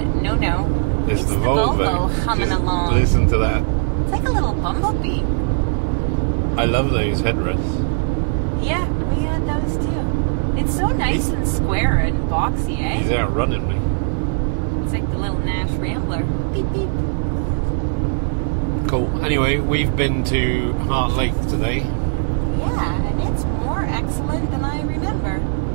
no. It's the Volvo humming along. Listen to that. It's like a little bumblebee. I love those headrests. Yeah, we had those too. It's so nice and square and boxy, eh? He's outrunning me. It's like the little Nash Rambler. Beep, beep. Cool. Anyway, we've been to Hart Lake today. Yeah, and it's more excellent than I remember.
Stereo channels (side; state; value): left; silent; digital silence